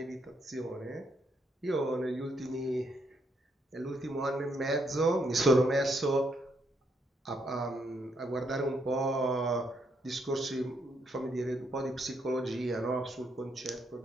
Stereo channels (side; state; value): both; normal; correlation 0.75